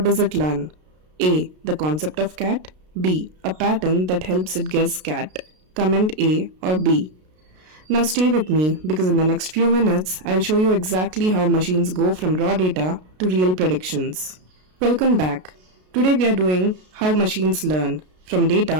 does it learn? A. The concept of cat. B. A pattern that helps it guess cat. Comment A or B. Now stay with me because in the next few minutes, I'll show you exactly how machines go from raw data to real predictions. Welcome back. Today we are doing how machines learn from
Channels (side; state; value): left; late; 33 ms